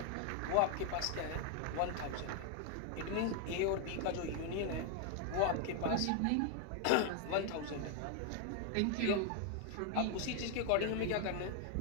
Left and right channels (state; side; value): different; both; correlation 0.00